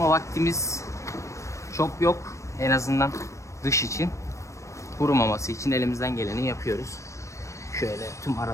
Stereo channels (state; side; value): late; right; 0.15 ms